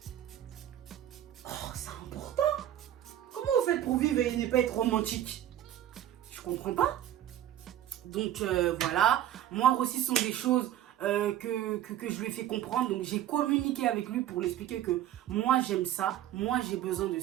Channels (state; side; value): quieter; left; 11.9 dB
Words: Oh, c'est important. Comment vous faites pour vivre et ne pas être romantique? Je comprends pas. Donc voilà, moi aussi, ce sont des choses que je lui ai fait comprendre. Donc j'ai communiqué avec lui pour lui expliquer que moi j'aime ça, moi j'ai besoin de